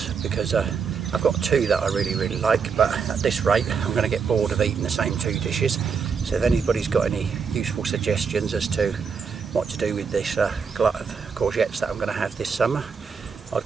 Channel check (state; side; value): quieter; left; 5.9 dB